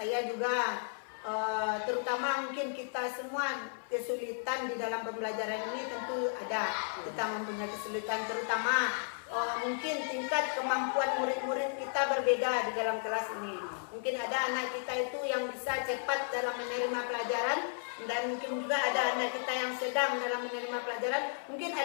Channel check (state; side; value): silent; right; 55 dB below the other